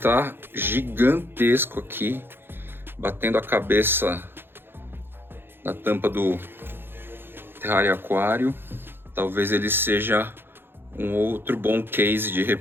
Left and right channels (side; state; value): left; late; 0.10 ms